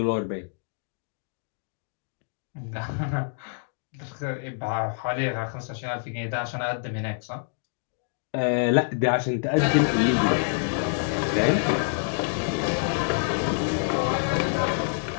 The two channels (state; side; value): silent; right; digital silence